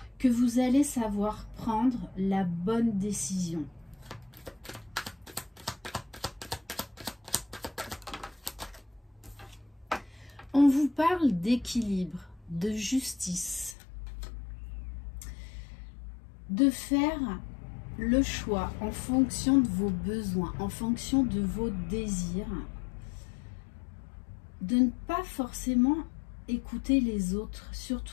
que vous allez savoir prendre la bonne décision. On vous parle d'équilibre, de justice, de faire le choix en fonction de vos besoins, en fonction de vos désirs, de ne pas forcément écouter les autres,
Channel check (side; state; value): right; drops out; at 13.8 s